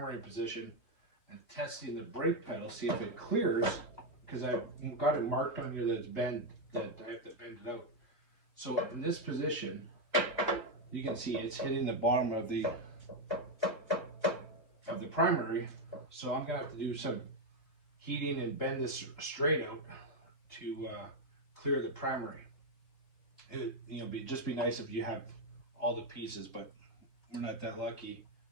position and testing the brake pedal, see if it clears, because I've got it marked on here that it's bent, that I have to bend it out. So in this position, you can see it's hitting the bottom of the primary. So I'm gonna have to do some heating and bend this straight out to clear the primary. It, you know, just be nice if you have all the pieces, but we're not that lucky,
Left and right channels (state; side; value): late; right; 2.6 ms